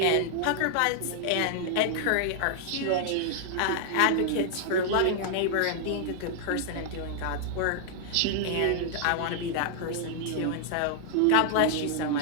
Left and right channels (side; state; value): both; different; correlation -0.01